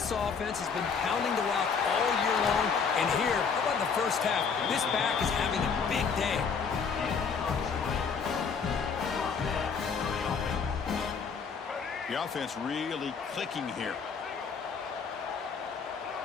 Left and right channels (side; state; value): right; quieter; 5.8 dB